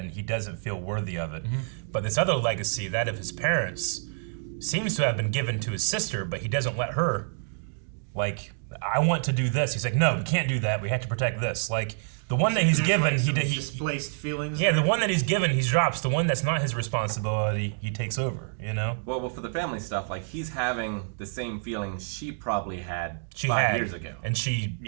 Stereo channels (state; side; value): silent; left; digital silence